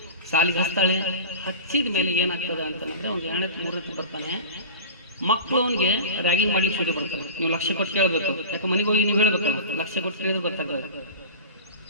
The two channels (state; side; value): inverted; both; correlation -0.35